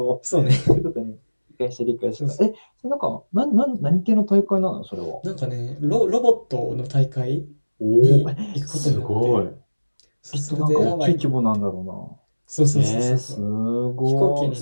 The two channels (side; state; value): both; inverted; correlation -1.00